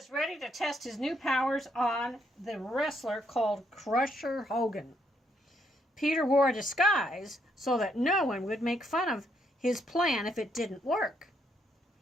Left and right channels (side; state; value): both; normal; correlation 0.74